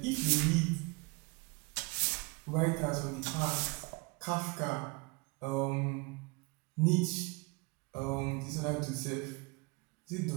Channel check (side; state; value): left; quieter; 28.6 dB